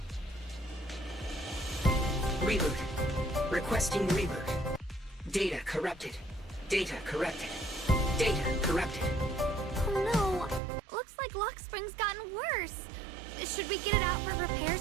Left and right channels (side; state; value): left; drops out; at 10.6 s